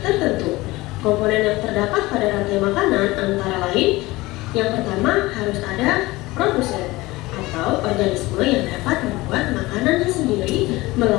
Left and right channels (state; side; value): quieter; right; 20.2 dB